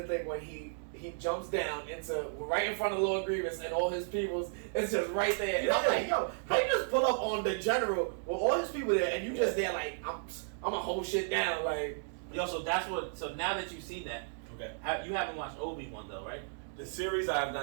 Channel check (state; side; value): silent; left; digital silence